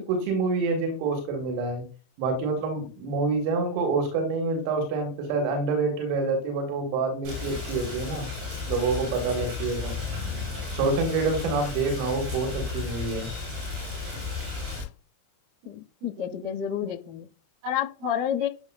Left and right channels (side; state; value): left; late; 27 ms